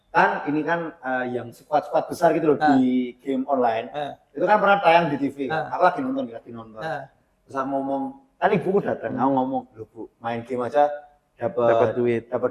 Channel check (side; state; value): both; identical; correlation 1.00